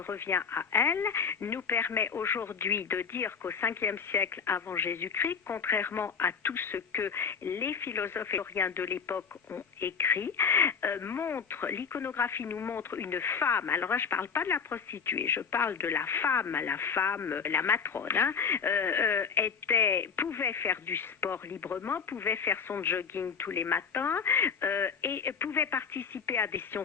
à elle, nous permet aujourd'hui de dire qu'au 5e siècle avant Jésus-Christ, contrairement à tout ce que les philosophes et historiens de l'époque ont écrit, l'iconographie nous montre une femme, alors là je ne parle pas de la prostituée, je parle de la femme, la matrone, hein, pouvait faire du sport librement, pouvait faire son jogging tous les matins et pouvait participer à des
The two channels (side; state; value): right; quieter; 6.1 dB